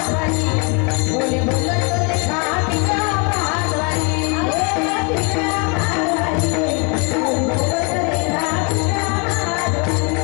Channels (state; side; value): quieter; right; 31.8 dB